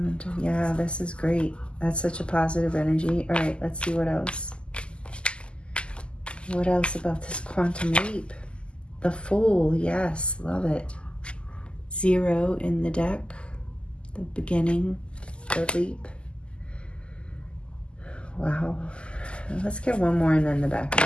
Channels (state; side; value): late; right; 0.051 ms